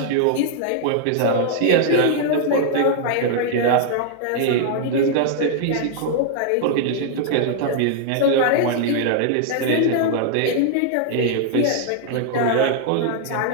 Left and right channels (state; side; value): different; both; correlation 0.00